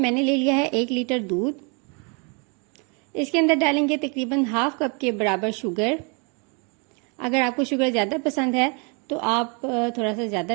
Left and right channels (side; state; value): left; quieter; 34.3 dB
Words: ले लिया है 1 लीटर दूध। इसके अंदर डालेंगे तकरीबन हाफ कप के बराबर शुगर। अगर आपको शुगर ज़्यादा पसंद है तो आप थोड़ा सा